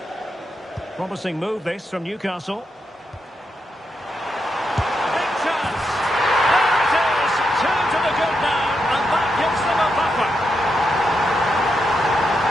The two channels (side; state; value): both; normal; correlation 0.83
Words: Promising move this from Newcastle. Big